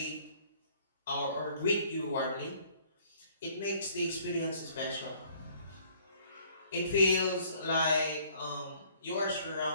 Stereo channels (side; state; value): both; inverted; correlation -0.58